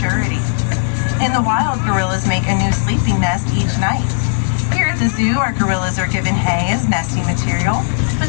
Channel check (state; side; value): silent; right; digital silence